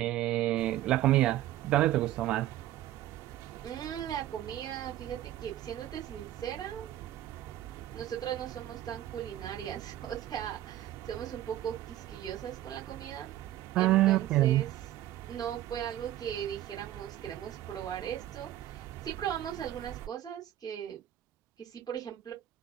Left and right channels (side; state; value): left; quieter; 13.3 dB